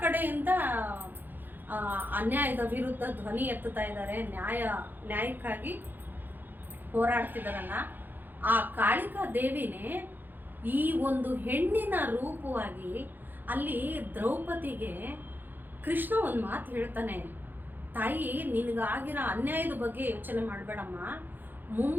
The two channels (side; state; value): left; late; 0.090 ms